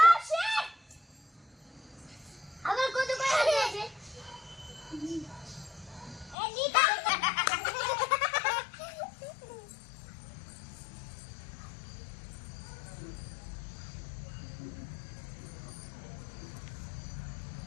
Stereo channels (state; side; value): drops out; right; at 6.4 s